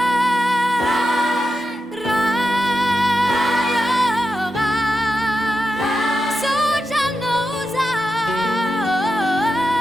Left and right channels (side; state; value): both; normal; correlation 0.89